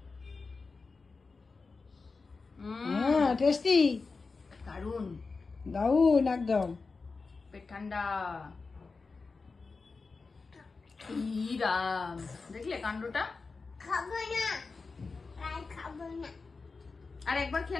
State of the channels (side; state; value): right; quieter; 4.3 dB